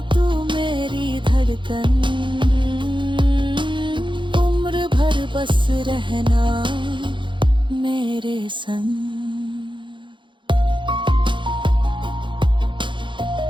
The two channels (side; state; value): left; late; 0.23 ms